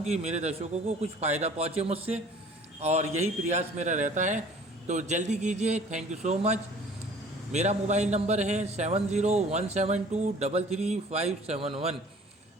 कि मेरे दर्शकों को कुछ फ़ायदा पहुँचे मुझसे, और यही प्रयास मेरा रहता है। तो जल्दी कीजिए। Thank you so much. मेरा मोबाइल नंबर है 7017233571।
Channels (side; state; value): both; normal; correlation 0.50